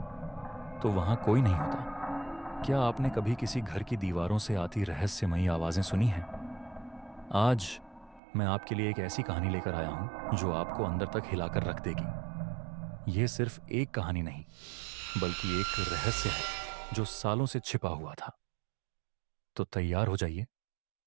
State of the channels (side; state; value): left; drops out; at 8.2 s